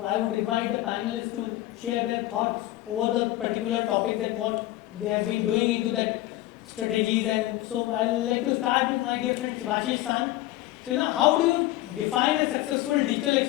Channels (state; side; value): quieter; right; 16.2 dB